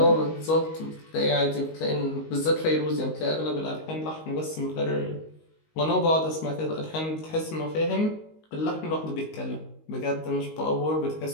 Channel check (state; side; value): late; right; 19 ms